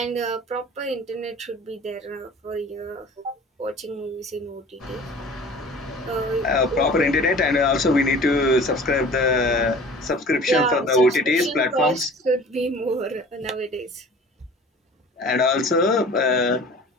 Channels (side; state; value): both; normal; correlation 0.44